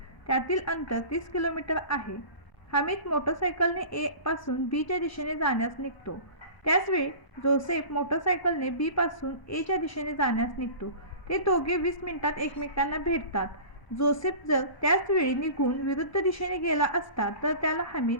त्यातील अंतर 30 किलोमीटर आहे. हमीद मोटरसायकलने A पासून B च्या दिशेने जाण्यास निघतो. त्याचवेळी जोसेफ मोटरसायकलने B पासून A च्या दिशेने जाण्यास निघतो. ते दोघे 20 मिनिटात एकमेकांना भेटतात. जोसेफ जर त्याच वेळी निघून विरुद्ध दिशेने गेला असता तर त्याला हमीद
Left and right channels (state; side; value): late; right; 1.0 ms